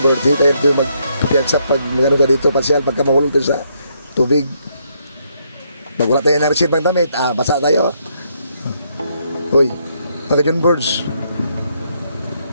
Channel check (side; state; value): both; inverted; correlation -0.74